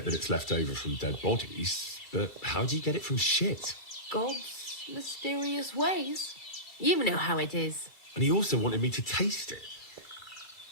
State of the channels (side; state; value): right; late; 2.3 ms